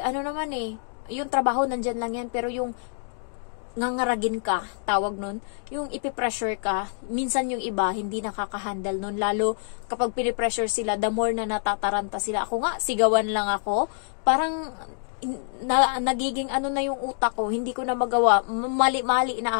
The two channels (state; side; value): silent; right; digital silence